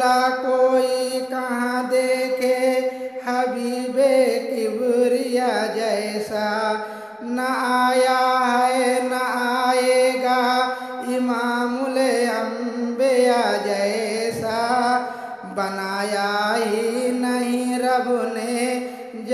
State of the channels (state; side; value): identical; both; correlation 1.00